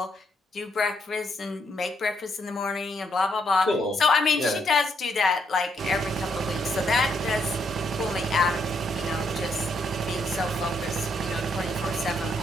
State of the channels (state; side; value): normal; both; correlation 0.74